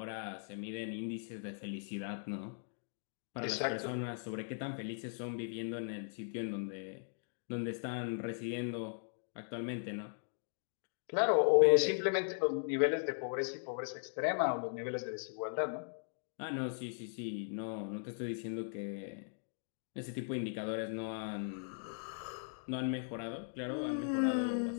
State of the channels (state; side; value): silent; right; digital silence